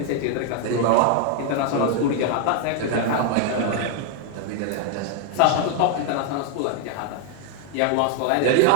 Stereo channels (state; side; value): different; both; correlation 0.00